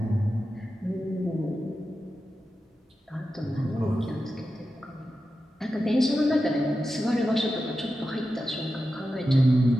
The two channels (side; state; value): both; normal; correlation 0.91